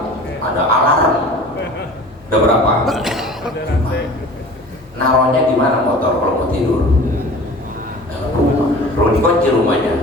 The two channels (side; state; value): both; normal; correlation 0.42